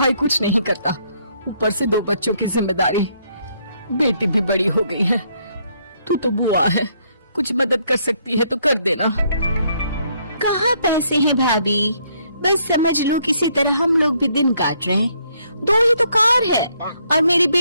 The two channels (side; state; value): both; inverted; correlation -0.70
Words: कुछ नहीं करता, ऊपर से 2 बच्चों की जिम्मेदारी, बेटी भी बड़ी हो गई है। तू तो बुआ है, कुछ मदद कर सकती है तो कर देना। कहाँ पैसे हैं भाभी, बस समझ लो किसी तरह हम लोग भी दिन काट रहे हैं। 2 ही तो कार है और मेरी